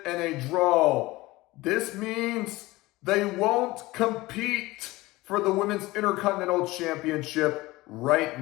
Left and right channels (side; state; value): right; quieter; 19.8 dB